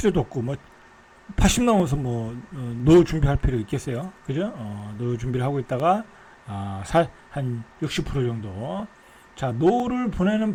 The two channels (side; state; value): both; identical; correlation 1.00